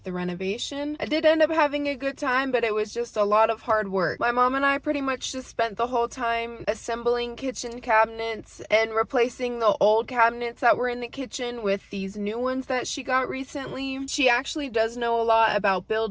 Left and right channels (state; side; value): identical; both; correlation 1.00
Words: the renovation. I did end up having a good time, but it was just a lot of hard work. My mom and I pretty much just spent the whole time assembling kitchen cabinets and replacing the old cabinets that were in the kitchen with these new ones that she got recently. She actually does know a lot about